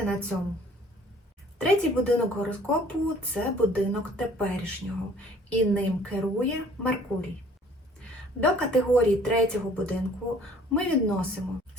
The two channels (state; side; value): normal; both; correlation 0.54